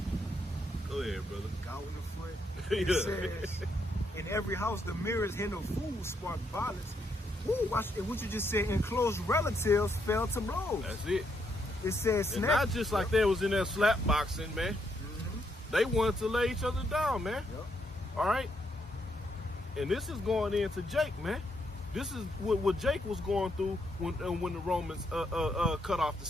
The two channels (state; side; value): normal; both; correlation 0.77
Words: Go ahead, brother. Cow in the foot. Yeah. It says, in every house, the merest hint of food sparked violence. Woo, watch it. What you just said, and close relatives fell to blows. That's it. It says, And not just like they was in there slap boxing, man. They wanted to lay each other down, man. Yep. All right. And this is going into Jake, man. This is what Jake was going through when the Romans cut off the